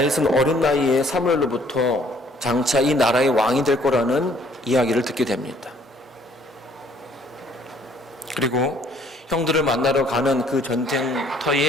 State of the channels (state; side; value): normal; both; correlation 0.61